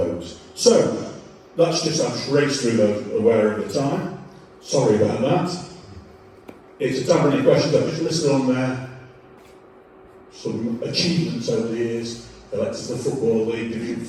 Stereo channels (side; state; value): both; identical; correlation 1.00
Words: So, that's just, I've just raced through those aware of the time. Sorry about that. It's a tablet questions, I've just listed on there some achievements over the years. Elected to the Football League, Division